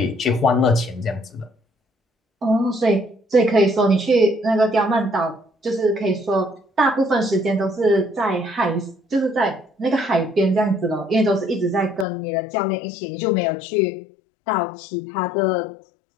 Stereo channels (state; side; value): drops out; right; at 12.1 s